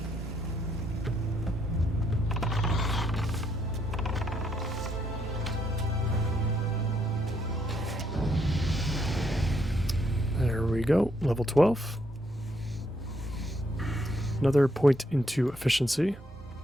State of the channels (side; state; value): both; normal; correlation 0.74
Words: There we go, level 12. Another point into efficiency.